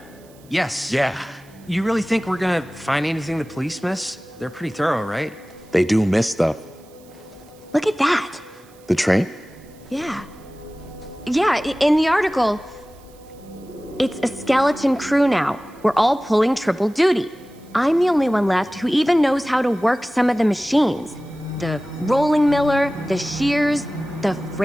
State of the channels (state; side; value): noise; right; hiss, 28 dB below the sound